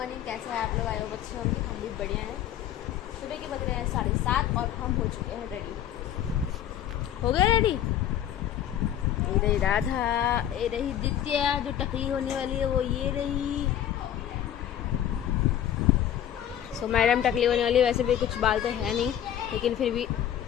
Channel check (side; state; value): right; quieter; 10.7 dB